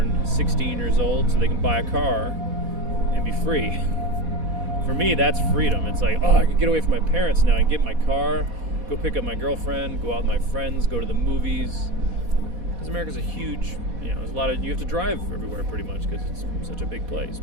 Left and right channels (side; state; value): left; late; 4.1 ms